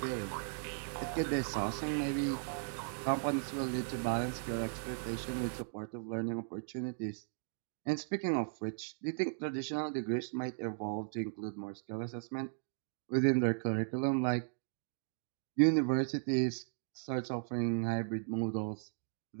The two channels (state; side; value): silent; left; digital silence